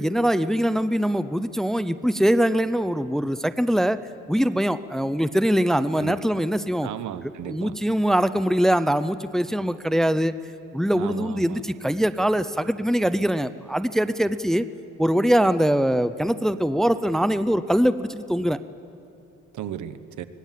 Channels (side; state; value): both; normal; correlation 0.95